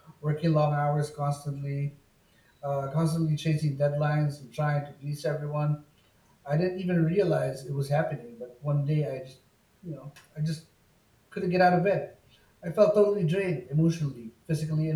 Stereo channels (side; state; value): both; identical; correlation 1.00